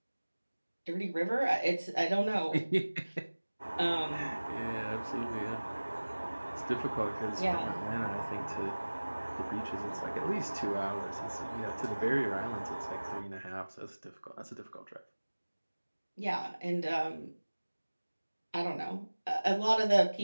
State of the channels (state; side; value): inverted; both; correlation -1.00